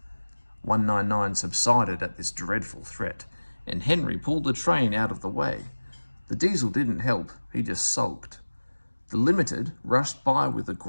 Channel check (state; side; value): inverted; both; correlation -1.00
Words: 199 subsided at this dreadful threat, and Henry pulled the train out of the way. The diesel didn't help, he just sulked. The Limited rushed by with a